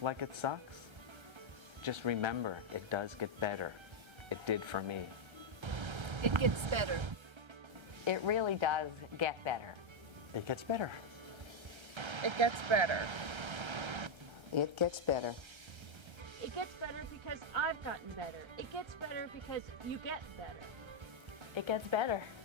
like it sucks, just remember it does get better. It did for me. It gets better. It really does get better. It gets better. It gets better. It gets better. It gets better because I've gotten better. It gets better because you get better. It gets better.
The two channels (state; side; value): late; left; 1.3 ms